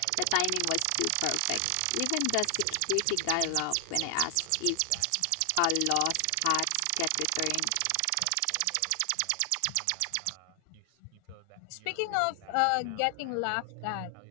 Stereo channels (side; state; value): both; different; correlation 0.00